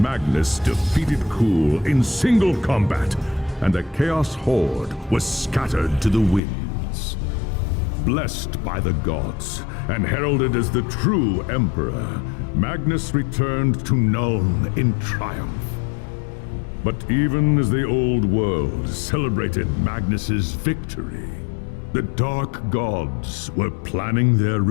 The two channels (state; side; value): drops out; right; at 6.4 s